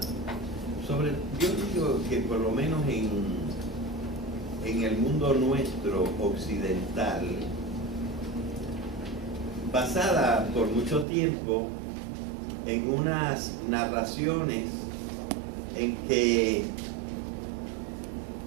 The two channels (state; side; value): drops out; left; at 11.1 s